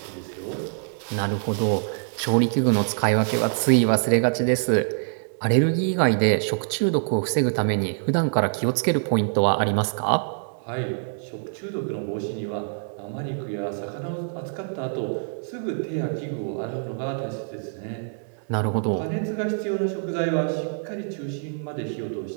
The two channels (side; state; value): left; silent; digital silence